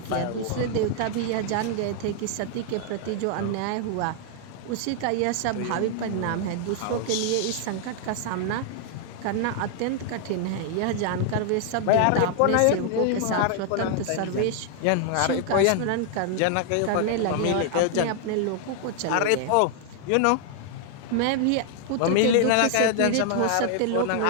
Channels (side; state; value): both; different; correlation 0.00